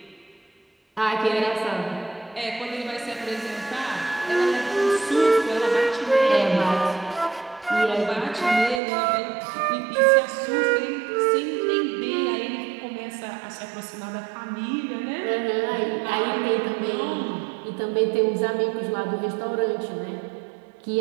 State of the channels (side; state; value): left; drops out; at 8.8 s